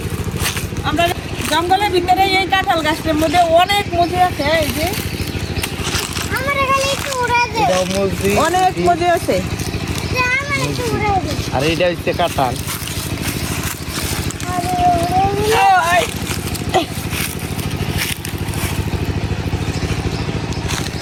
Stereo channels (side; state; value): both; identical; correlation 1.00